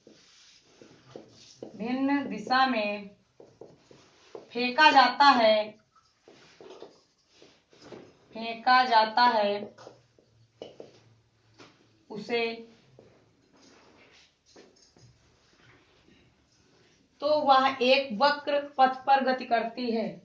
में फेंका जाता है उसे तो वह एक वक्र पथ पर गति करती है।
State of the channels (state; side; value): identical; both; correlation 1.00